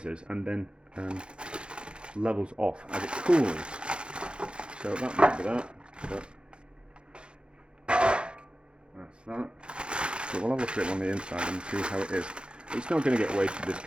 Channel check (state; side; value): late; left; 0.055 ms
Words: and then levels off as it cools. So that might be that. But that's that. So we'll have a look at it on the inside and see how it is. It's not going to get wasted, this